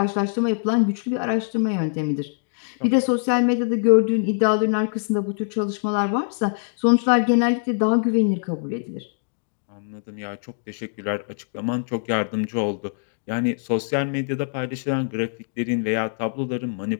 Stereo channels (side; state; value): right; silent; 63 dB below the other